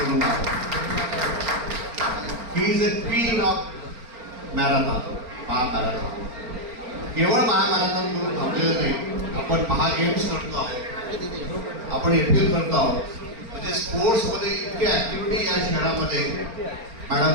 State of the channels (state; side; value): late; left; 4.4 ms